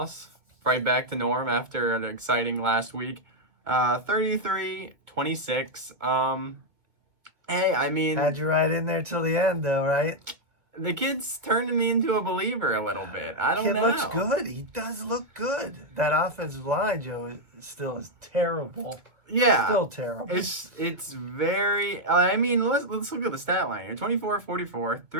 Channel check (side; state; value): left; late; 2.2 ms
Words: Right back to norm after an exciting last week. 33-26. Hey, I mean... Had you right in there till the end, though, right? The kid's turning me into a believer a little bit. I don't know. He looks good. He does look good. That offensive line, Joe, still is terrible. Yeah. Still terrible. It's very... I mean, let's look at the stat line here. 24-44,